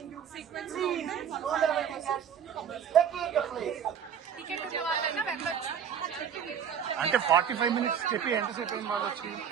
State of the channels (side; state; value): left; quieter; 8.1 dB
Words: అంటే 45 minutes చెప్పి ఎంతసేపు అయింది వాళ్ళు వచ్చి?